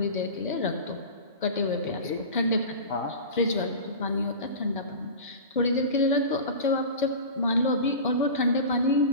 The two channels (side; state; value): both; inverted; correlation -0.31